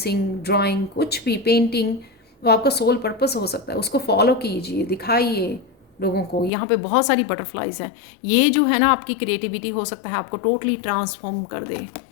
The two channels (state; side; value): drops out; right; at 6.5 s